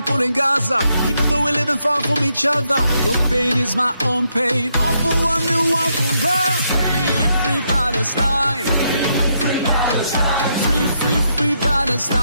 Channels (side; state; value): both; inverted; correlation -0.78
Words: in Gaza, even though we're living far from each other, your pain is my own pain. All for one and one for all. Free, free Palestine. Free, free, free